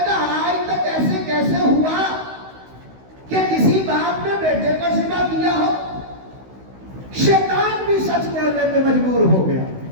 گا۔ آج تک ایسے کیسے ہوا کہ کسی باپ نے بیٹے کو ذبح کیا ہو؟ شیطان بھی سچ بولنے پہ مجبور ہو گیا،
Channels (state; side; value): late; left; 16 ms